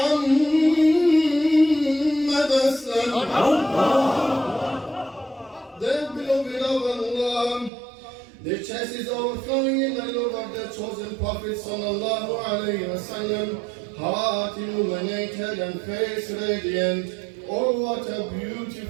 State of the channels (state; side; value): drops out; left; at 7.7 s